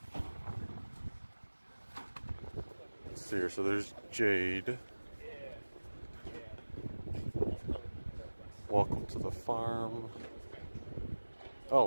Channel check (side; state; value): both; inverted; correlation -1.00